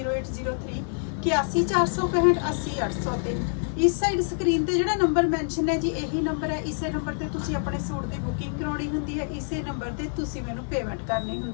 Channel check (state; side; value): silent; right; digital silence